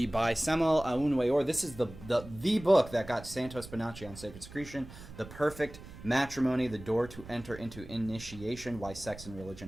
by Samuel Aunweor. This is the book that got Santos Bonacci on Sacred Secretion, The Perfect Matrimony, The Door to Enter into Initiation, Why Sex and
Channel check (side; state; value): right; noise; rumble, 16 dB below the sound